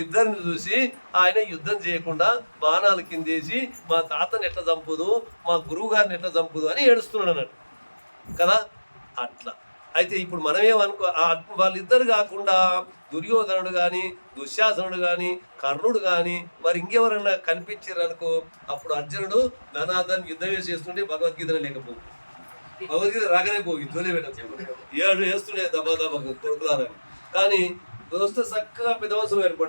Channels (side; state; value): both; inverted; correlation -1.00